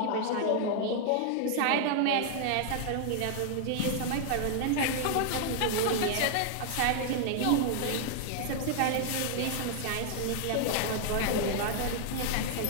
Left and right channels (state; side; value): different; both; correlation 0.00